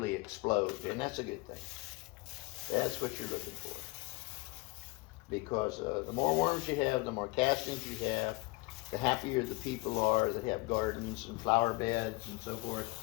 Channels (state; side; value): quieter; right; 24.4 dB